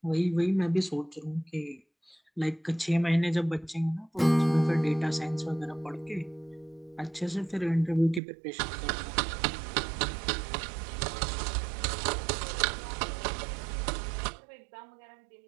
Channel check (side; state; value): left; drops out; at 8.2 s